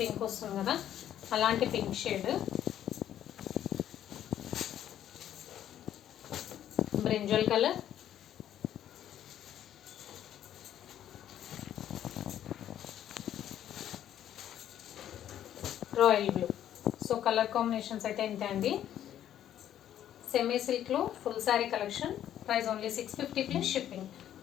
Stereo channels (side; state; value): right; quieter; 11.0 dB